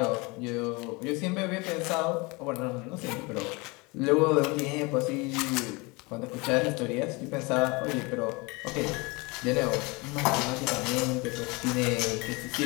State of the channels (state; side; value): quieter; right; 26.5 dB